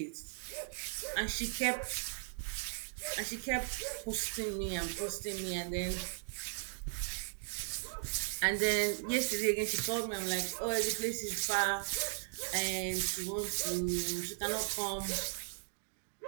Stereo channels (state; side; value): silent; left; digital silence